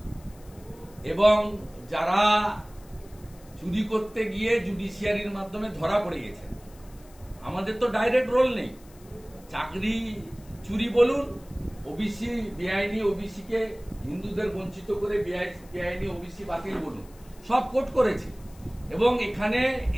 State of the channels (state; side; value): noise; left; hiss, 26 dB below the sound